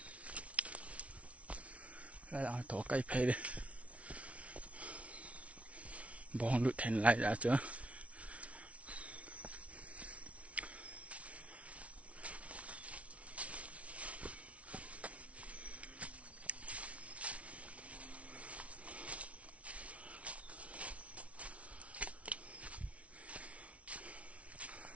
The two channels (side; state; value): left; late; 0.064 ms